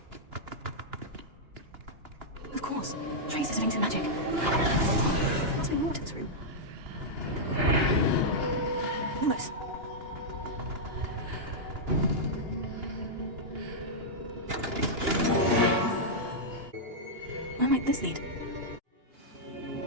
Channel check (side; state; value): left; late; 2.9 ms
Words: Of course. Trace is linked to magic. Must be more to this room. Lumos. Where might this lead?